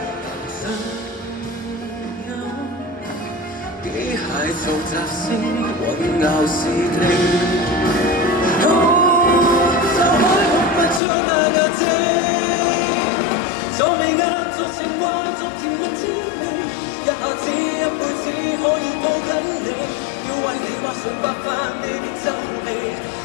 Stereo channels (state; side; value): drops out; right; at 11.0 s